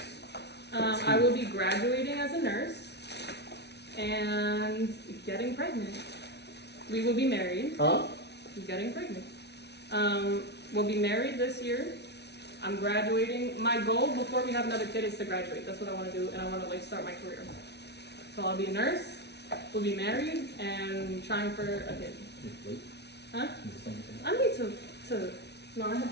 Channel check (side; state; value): right; late; 0.49 ms